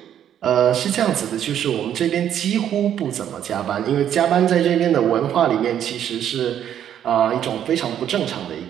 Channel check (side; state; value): left; quieter; 10.0 dB